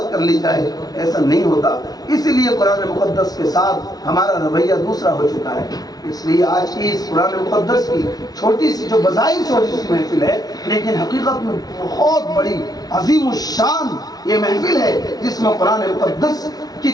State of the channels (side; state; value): right; late; 0.19 ms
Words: کر لی جائے؟ ایسا نہیں ہوتا۔ اسی لیے قرآن مقدس کے ساتھ ہمارا رویہ دوسرا ہو چکا ہے۔ اس لیے آج کی اس قرآن مقدس کی چھوٹی سی، جو بظاہر چھوٹی سی محفل ہے، لیکن حقیقت میں بہت بڑی عظیم الشان یہ محفل ہے جس میں قرآن مقدس کی